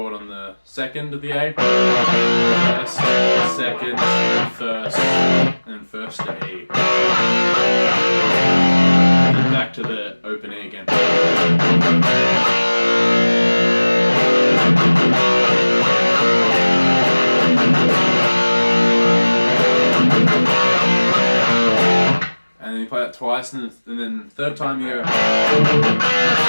on the second of the A. First, second, first, and then first to E. Then back to the open E again. And then you play that twice, and then third time you go.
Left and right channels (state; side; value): inverted; both; correlation -1.00